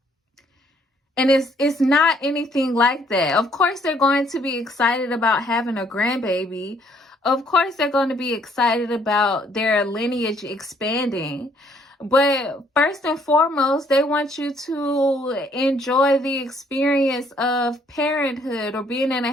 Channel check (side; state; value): both; normal; correlation 0.65